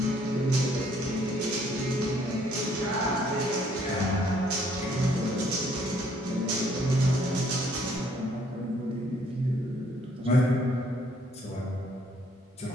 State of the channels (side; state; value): both; normal; correlation 0.65